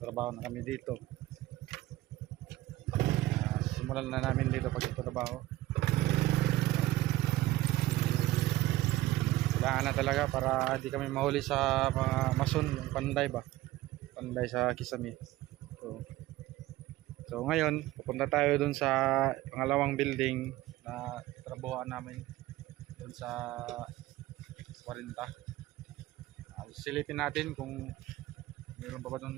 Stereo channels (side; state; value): left; quieter; 16.8 dB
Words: na kami dito. Simulan na namin dito pagtatrabaho. Kailangan na talaga para hindi kami mahuli sa mga mason, yung panday ba? Panday sa Kisami. So ngayon, pupunta tayo dun sa pangalawang building na trabahoan namin dun sa 40. Silipin natin kung mayroon pa ba